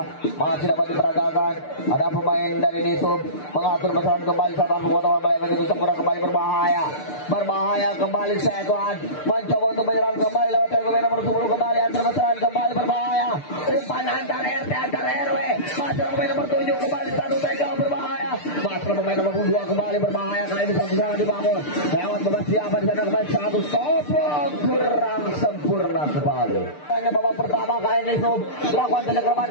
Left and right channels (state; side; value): late; right; 6.7 ms